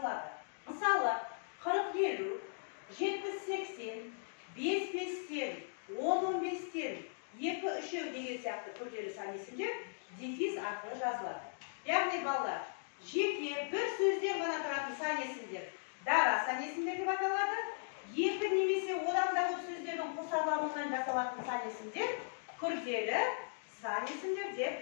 Мысалы, 40-50, 70-80, 5-5-тен, 10-15-тен, 2-3 деген сияқты күрделі сан есімдер дефис арқылы жазылады. Яғни балалар, жеке бір сөзден ғана тұратын сан есімдер дара сан есімдер деп аталады. Екі немесе одан да көп сөздердің қосарлануынан жасалатын сан есімдер күрделі сан есімдер деп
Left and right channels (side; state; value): right; silent; digital silence